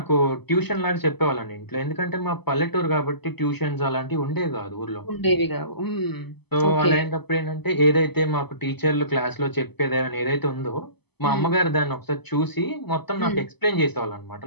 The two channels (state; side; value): late; right; 0.98 ms